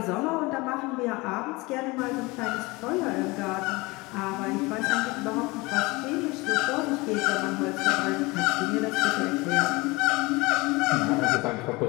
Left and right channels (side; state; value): right; quieter; 23.6 dB